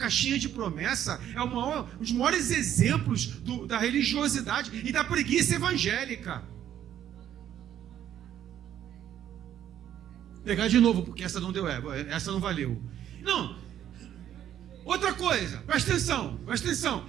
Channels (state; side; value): quieter; left; 10.8 dB